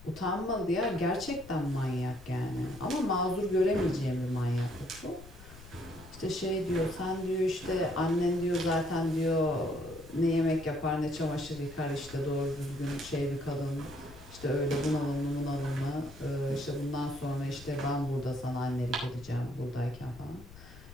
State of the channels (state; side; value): noise; left; rumble, 18 dB below the sound